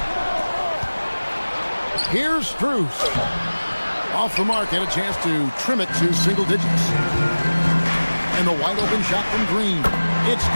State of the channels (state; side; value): inverted; both; correlation -1.00